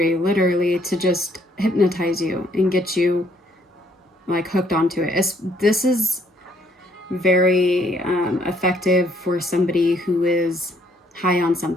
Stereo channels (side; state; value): both; normal; correlation 0.67